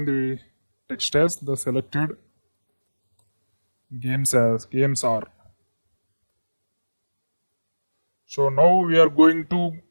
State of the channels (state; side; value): inverted; both; correlation -1.00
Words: the text as the selected games are. So now we are going to